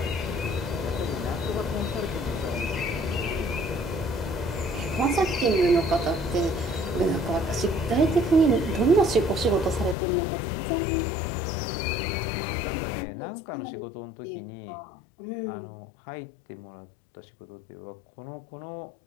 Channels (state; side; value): drops out; right; at 10.0 s